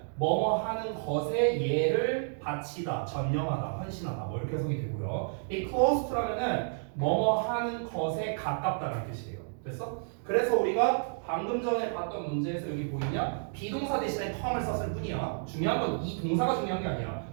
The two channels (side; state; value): left; silent; digital silence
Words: 뭐뭐 하는 것에 얘를 바치다, 전념하다, 헌신하다 뭐 이렇게 해석이 되고요. 이 close to라면은 뭐뭐 하는 것에 가깝다는 뜻이에요. 됐어? 그래서 우리가 방금 전에 봤던 문제에서 여기 보이냐? 비동사 대신에 come을 썼을 뿐이야. 중요한 건 이 동사가 중요한 게 아니야.